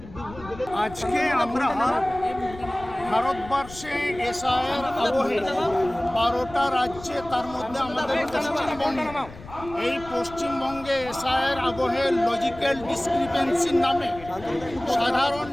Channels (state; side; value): noise; left; rumble, 16 dB below the sound